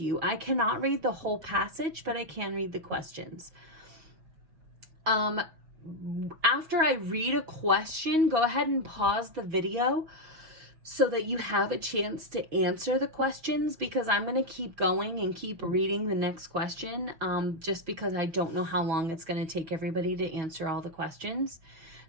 you. I cannot read the whole passage, but I can read the questions. After I read a question, go ahead and pause the video so that you have a chance to answer the questions, because I'm going to keep going and keep reading the next question just because I don't know how long it's going to take everybody to answer all the questions.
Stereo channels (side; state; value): left; late; 6.4 ms